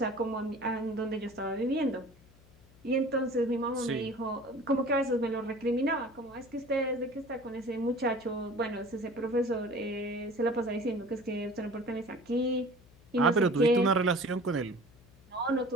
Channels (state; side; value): noise; left; hum, 26 dB below the sound